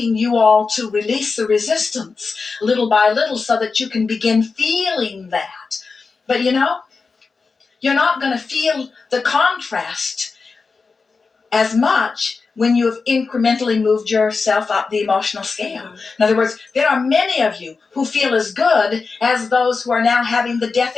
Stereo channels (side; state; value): right; quieter; 4.5 dB